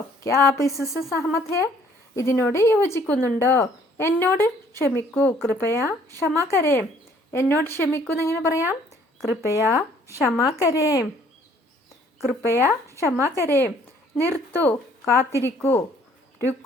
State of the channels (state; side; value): normal; both; correlation 0.60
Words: ക്യാ ആപ്പ് ഇസ്സെ സഹമത് ഹേ, ഇതിനോട് യോജിക്കുന്നുണ്ടോ? എന്നോട് ക്ഷമിക്കൂ. കൃപയ ക്ഷമാ കരേം, എന്നോട് ക്ഷമിക്കൂ എന്നെങ്ങനെ പറയാം? കൃപയ ക്ഷമാ കരേം, കൃപയ ക്ഷമാ കരേം. നിർത്തൂ, കാത്തിരിക്കൂ.